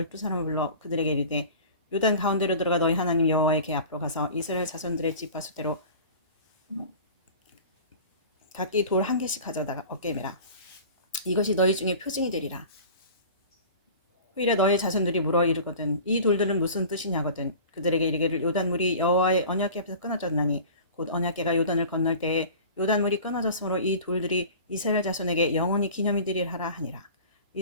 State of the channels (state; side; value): inverted; both; correlation -0.40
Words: 불러 그들에게 이르되 요단 가운데로 들어가 너희 하나님 여호와의 궤 앞으로 가서 이스라엘 자손들의 지파 수대로 각기 돌 한 개씩 가져다가 어깨에 매라. 이것이 너희 중에 표징이 되리라. 후일에 너희 자손들이 물어 이르거든 이 돌들은 무슨 뜻이냐거든 그들에게 이르기를 요단물이 여호와의 언약궤 앞에서 끊어졌나니 곧 언약궤가 요단을 건널 때에 요단물이 끊어졌으므로 이 돌들이 이스라엘 자손에게 영원히 기념이 되리라 하니라.